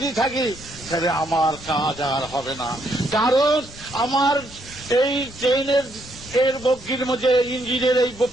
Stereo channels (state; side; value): normal; both; correlation 0.74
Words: থাকি, তাহলে আমার কাজ আর হবে না। কারণ আমার এই ট্রেনের এর বগির মধ্যে, ইঞ্জিনের এই